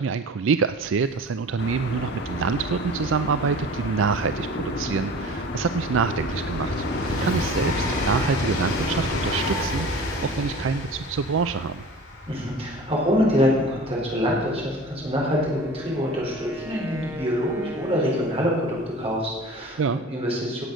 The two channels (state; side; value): normal; both; correlation 0.40